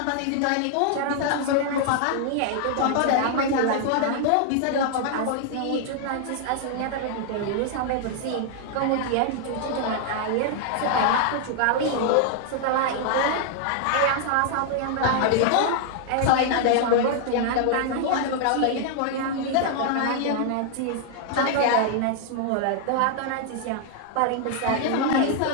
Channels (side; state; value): both; different; correlation 0.00